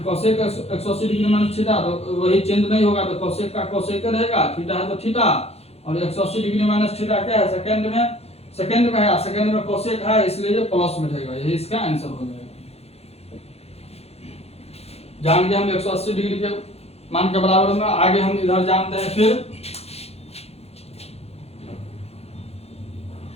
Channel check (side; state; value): right; late; 0.30 ms